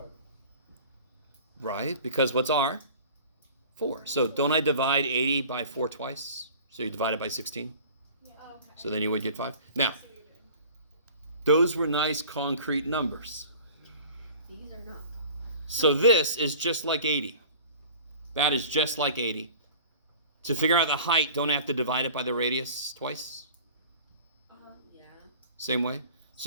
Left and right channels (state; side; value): inverted; both; correlation -0.43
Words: Right? Because what's r? 4. So don't I divide 80 by 4 twice? So you divide it by 16. Yeah. Okay. So then you would get 5. Now, I see what you're doing. those were nice concrete numbers. These are not. So this is just like 80. That is just like 80. To figure out the height, don't I have to divide it by the radius twice? Yeah. Same way?